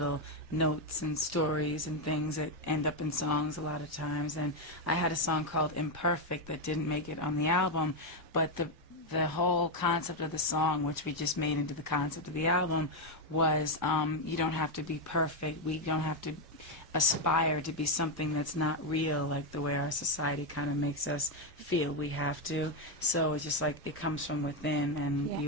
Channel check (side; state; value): both; normal; correlation 0.04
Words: notes and stories and things that end up in songs a lot of times. And I had a song called Imperfect that didn't make it on the album, but the whole concept of the song, which we just made into the concept of the album, was you don't have to be perfect. We don't have to aspire to be something that's not real, like the way our society kind of makes us feel we have to. So it's just like it comes from within, and